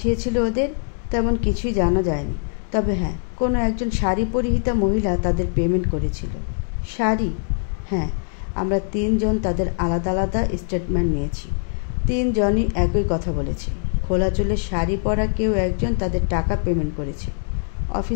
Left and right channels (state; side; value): silent; right; 59 dB below the other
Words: ওদের তেমন কিছুই জানা যায়নি। তবে হ্যাঁ, কোনো একজন শাড়ি পরিহিতা মহিলা তাদের পেমেন্ট করেছিল। শাড়ি? হ্যাঁ, আমরা 3 জন তাদের আলাদা আলাদা স্টেটমেন্ট নিয়েছি। 3 জনই একই কথা বলেছে। খোলা চুলের শাড়ি পরা কেউ একজন তাদের টাকা পেমেন্ট করেছে।